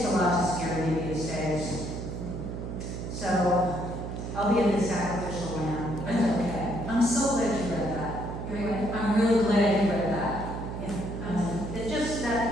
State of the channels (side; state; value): right; noise; hum, 6 dB below the sound